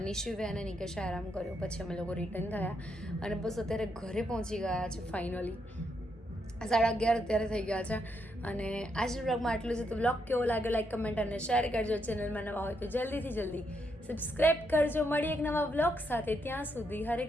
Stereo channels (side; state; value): both; normal; correlation 0.78